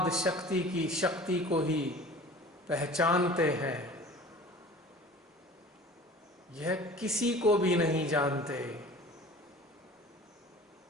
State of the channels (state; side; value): normal; both; correlation 0.42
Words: शक्ति की शक्ति को ही पहचानते हैं, यह किसी को भी नहीं जानते।